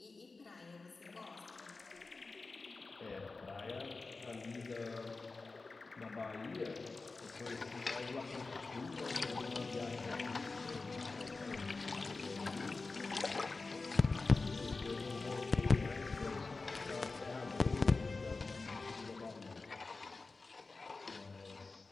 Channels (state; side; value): quieter; right; 3.8 dB